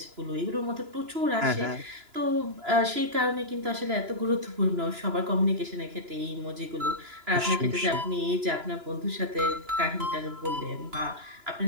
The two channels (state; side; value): late; left; 2.9 ms